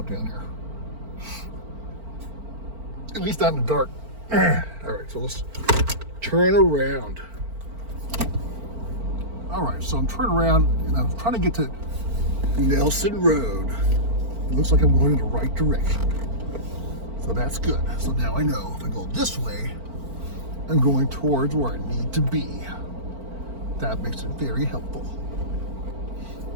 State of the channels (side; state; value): left; late; 4.4 ms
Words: down here. At least not in the dark. All right, so let's turn around. All right, so I'm turning around and I'm trying to get to Nelson Road. It looks like I'm going in the right direction. So that's good. So now I know if I go this way, I'm going towards where I need to be. That makes it very helpful.